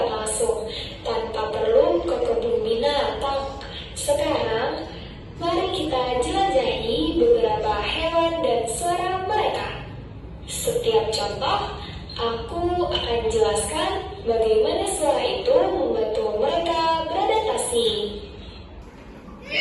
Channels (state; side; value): identical; both; correlation 1.00